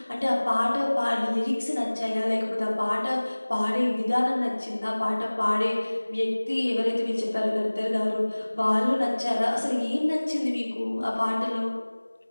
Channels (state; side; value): inverted; both; correlation -1.00